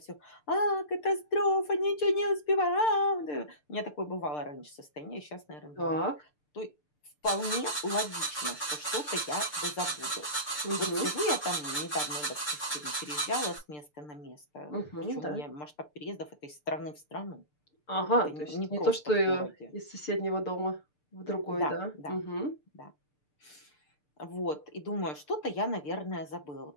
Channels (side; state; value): right; late; 6.7 ms